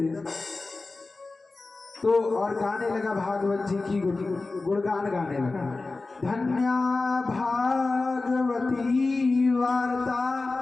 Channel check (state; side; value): quieter; right; 3.5 dB